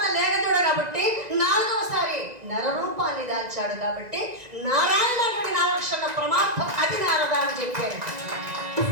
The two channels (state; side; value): late; left; 2.0 ms